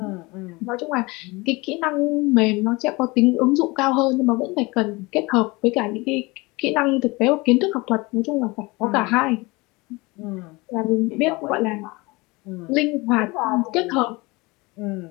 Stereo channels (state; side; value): quieter; right; 24.2 dB